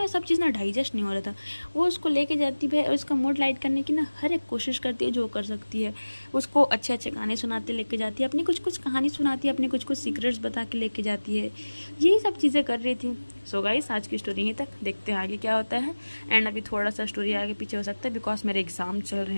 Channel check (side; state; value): both; inverted; correlation -1.00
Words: सब चीज़ ना डाइजेस्ट नहीं हो रहा था। वो उसको लेके जाती है और उसका मूड लाइट करने की ना हर एक कोशिश करती है जो कर सकती है। उसको अच्छे अच्छे गाने सुनाते लेके जाती है, अपनी कुछ कुछ कहानी सुनाती है, अपनी कुछ कुछ सीक्रेट्स बता के लेके जाती है, यही सब चीज़ें कर रही थी। सो गाइस आज की स्टोरी यहीं तक, देखते हैं आगे क्या होता है। एंड अभी थोड़ा सा स्टोरी आगे पीछे हो सकता है बिकॉज मेरे एग्जाम चल रहे